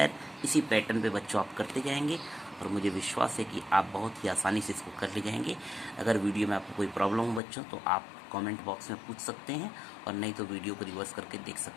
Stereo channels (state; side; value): drops out; right; at 7.4 s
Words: इसी पैटर्न पे बच्चों आप करते जाएंगे, और मुझे विश्वास है कि आप बहुत ही आसानी से इसको कर ले जाएंगे। अगर वीडियो में आपको कोई प्रॉब्लम हो बच्चों तो आप कमेंट बॉक्स में पूछ सकते हैं, और नहीं तो वीडियो को रिवर्स करके देख